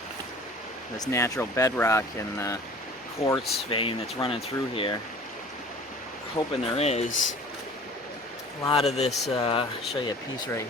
this natural bedrock and the quartz vein that's running through here. Hoping there is. A lot of this, I'll show you a piece right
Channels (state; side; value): normal; both; correlation 0.45